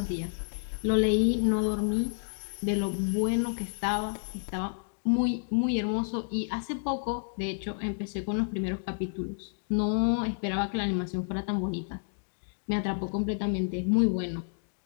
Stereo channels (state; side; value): silent; right; digital silence